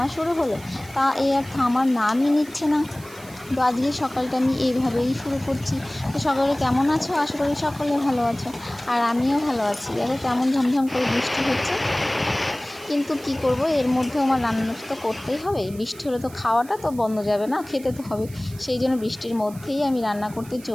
শুরু হলো, তা আর থামার নামই নিচ্ছে না। তো আজকে সকালটা আমি এইভাবেই শুরু করছি। তো সকালে কেমন আছো? আশা করি সকলে ভালো আছো, আর আমিও ভালো আছি। দেখো কেমন ঝমঝম করে বৃষ্টি হচ্ছে, কিন্তু কি করব, এর মধ্যে আমার রান্নাটা তো করতেই হবে। বৃষ্টি হলে তো খাওয়াটা তো বন্ধ যাবে না, খেতে তো হবে। সেই জন্য বৃষ্টির মধ্যেই আমি রান্না করতে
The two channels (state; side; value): noise; right; hiss, 20 dB below the sound